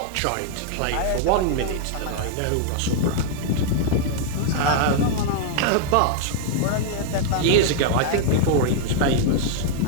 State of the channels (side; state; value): both; different; correlation 0.00